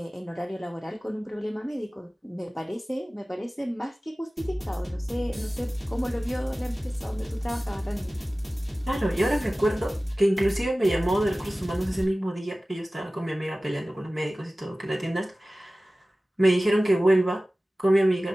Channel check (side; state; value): both; normal; correlation 0.97